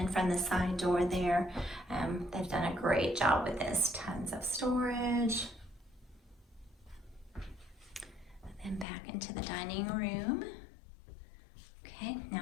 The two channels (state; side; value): drops out; right; at 8.8 s